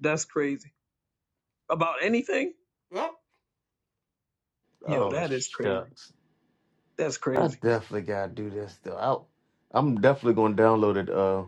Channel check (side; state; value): both; identical; correlation 1.00